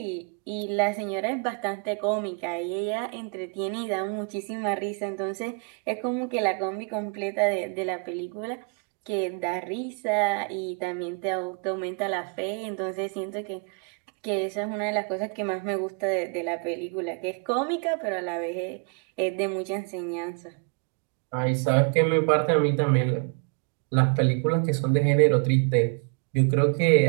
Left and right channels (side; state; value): left; quieter; 37.4 dB